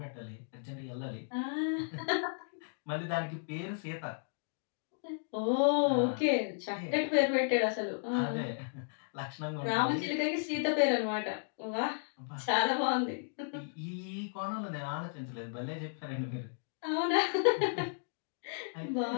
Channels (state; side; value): silent; right; digital silence